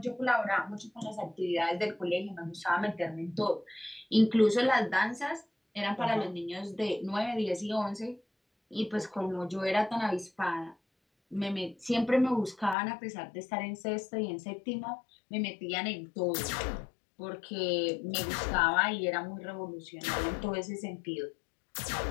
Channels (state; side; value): drops out; right; at 12.8 s